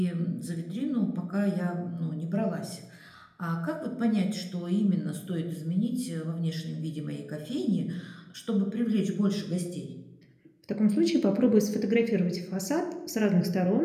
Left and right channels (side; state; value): both; identical; correlation 1.00